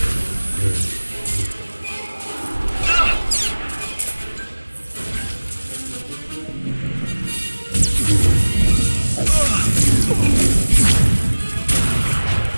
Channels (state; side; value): inverted; both; correlation -1.00